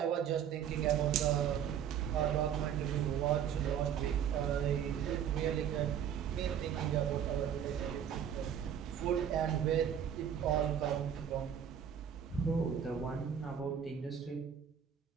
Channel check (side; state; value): left; quieter; 8.8 dB